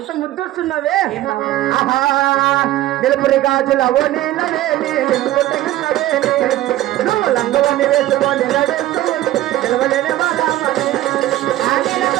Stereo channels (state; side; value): quieter; left; 14.8 dB